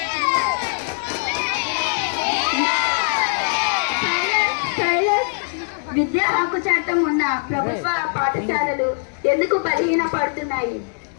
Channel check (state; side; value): silent; right; 65 dB below the other